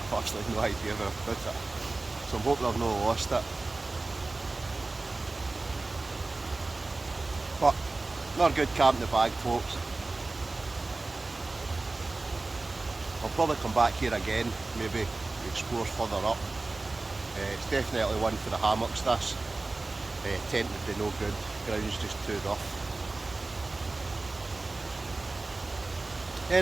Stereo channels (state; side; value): quieter; left; 3.2 dB